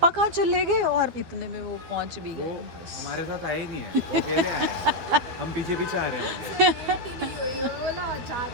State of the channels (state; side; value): late; left; 12 ms